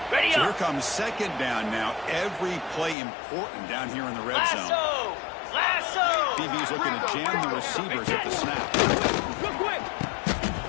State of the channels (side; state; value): right; drops out; at 3.0 s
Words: So here comes 2nd down now. Every play important down here in the red zone. Lasso. DB's looking to jam the receivers at the snap. Real quick.